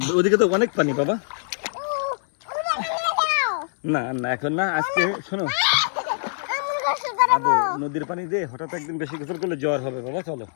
ওদিকে তো অনেক পানি বাবা। না না এখন না, আজকে শোনো নদীর পানি দিয়ে হঠাৎ একদিন বেশি গোসল করলে জ্বর হবে বাবা। চলো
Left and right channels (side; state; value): right; silent; digital silence